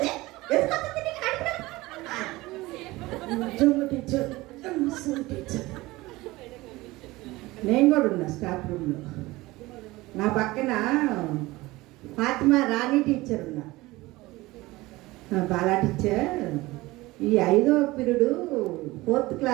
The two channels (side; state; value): left; quieter; 20.0 dB